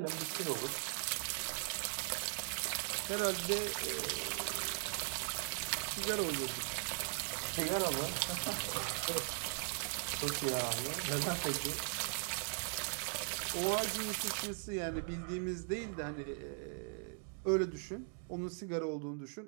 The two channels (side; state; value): left; silent; 52 dB below the other